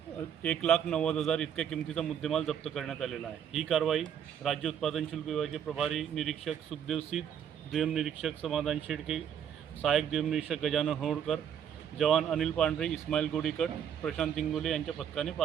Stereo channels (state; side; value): quieter; left; 8.9 dB